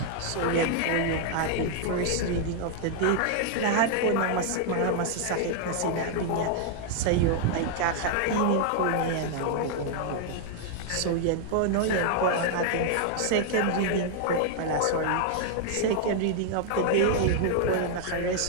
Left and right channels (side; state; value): both; different; correlation 0.00